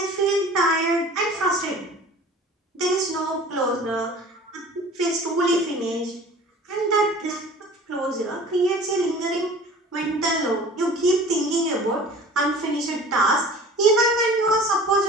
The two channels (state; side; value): normal; both; correlation 0.43